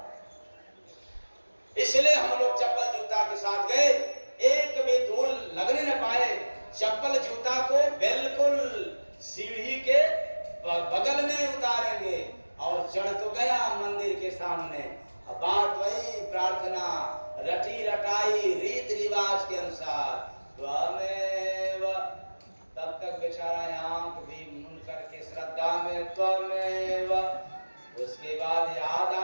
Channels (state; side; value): inverted; both; correlation -1.00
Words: इसलिए हम लोग चप्पल जूता के साथ गए, एक भी धूल लगने न पाए। चप्पल जूता को बिल्कुल सीढ़ी के बगल में उतारेंगे और चढ़ तो गया मंदिर के सामने। अब बात वही, प्रार्थना रटी रटाई रीत रिवाज के अनुसार, त्वमेव, तब तक बेचारा आंख भी मूंद करके श्रद्धा में त्वमेव। उसके बाद याद